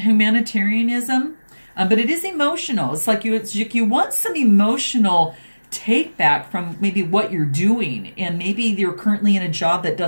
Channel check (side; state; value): both; inverted; correlation -1.00